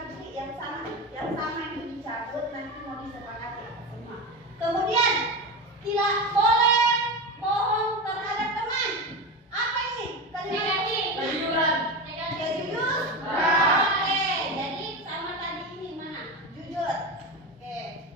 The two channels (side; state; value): both; normal; correlation 0.21